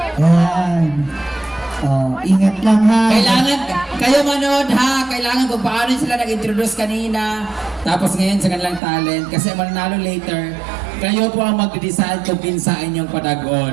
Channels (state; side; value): drops out; left; at 8.8 s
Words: Yan. Oh, ingat lang ha. Kailangan, kayo manood ha, kailangan kung paano sila nag-introduce kanina, tapos ngayon sa kanilang talent, kasi mananalo later, kayo po ang mag-decide kung pinsa inyong